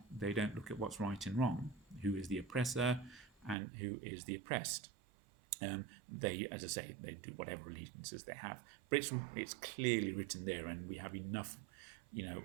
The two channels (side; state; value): left; drops out; at 3.6 s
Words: look at what's right and wrong, who is the oppressor and who is the oppressed. They, as I say, they do whatever allegiances they have, but it's clearly written there, and we have enough,